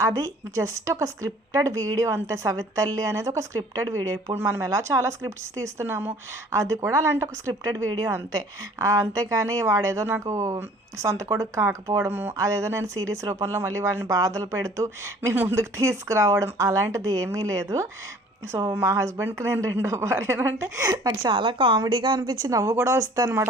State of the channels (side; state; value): both; normal; correlation 0.51